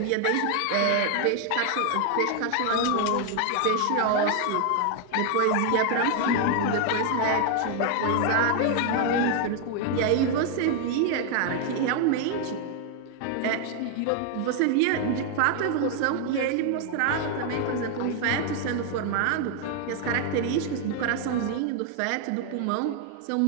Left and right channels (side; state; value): both; different; correlation 0.00